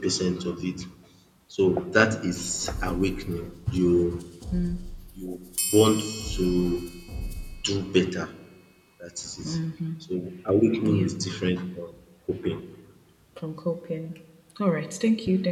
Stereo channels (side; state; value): both; identical; correlation 1.00